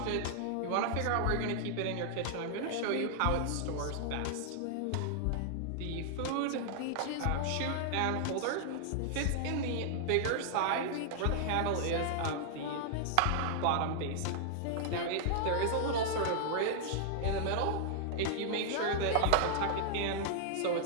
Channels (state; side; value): different; both; correlation -0.01